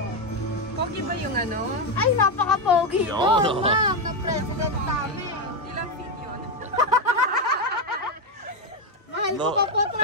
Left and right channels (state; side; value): normal; both; correlation 0.07